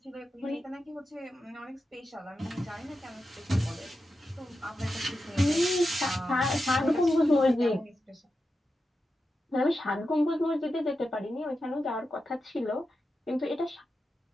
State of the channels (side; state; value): both; normal; correlation 0.90